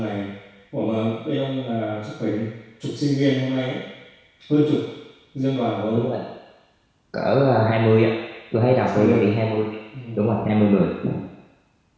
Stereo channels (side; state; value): both; identical; correlation 1.00